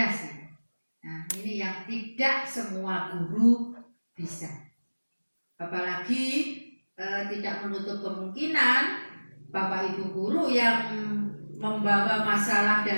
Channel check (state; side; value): inverted; both; correlation -1.00